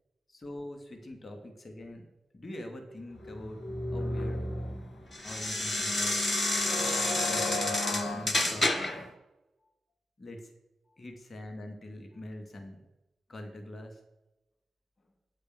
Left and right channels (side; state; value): both; normal; correlation 0.84